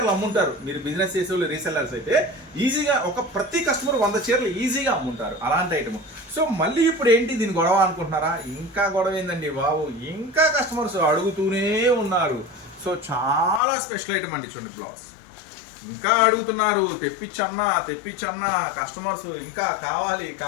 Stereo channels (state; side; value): drops out; right; at 13.6 s